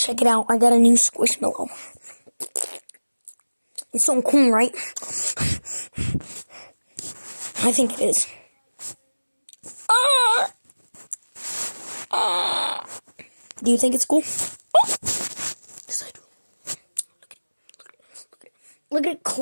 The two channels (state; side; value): inverted; both; correlation -1.00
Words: it out. I got a new squishmallow. It's so cool, right? I think it is. Do you think it's cool? Yes, I do. Look at it